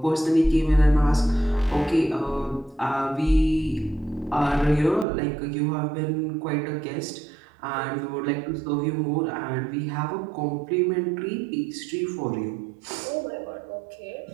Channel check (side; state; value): left; drops out; at 5.1 s